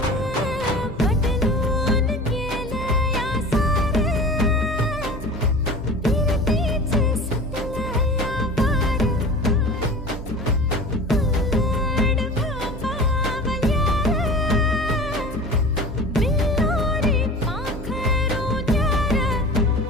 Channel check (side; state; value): both; normal; correlation 0.37